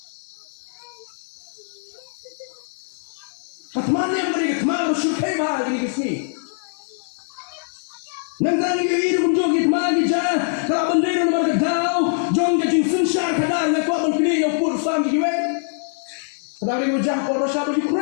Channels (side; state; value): right; silent; 64 dB below the other